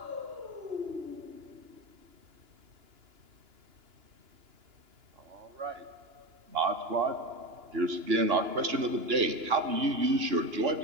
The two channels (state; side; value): late; left; 2.9 ms